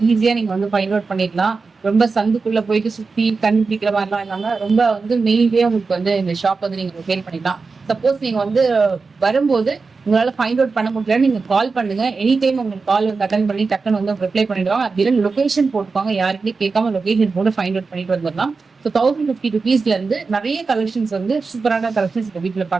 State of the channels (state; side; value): quieter; left; 4.4 dB